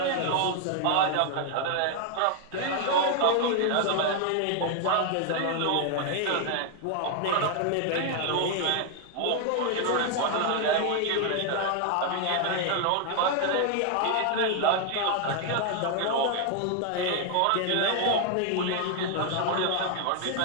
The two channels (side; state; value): both; different; correlation 0.00